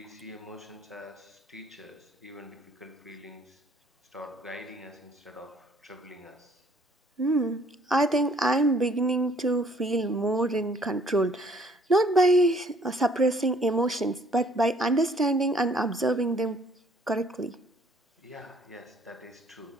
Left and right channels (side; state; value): both; normal; correlation 0.60